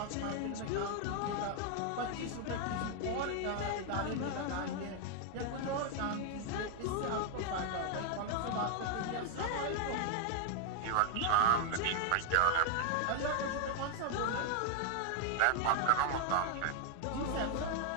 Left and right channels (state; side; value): different; both; correlation 0.01